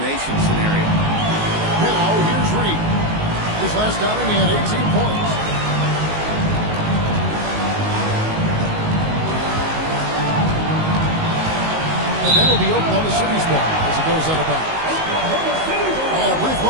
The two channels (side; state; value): left; late; 19 ms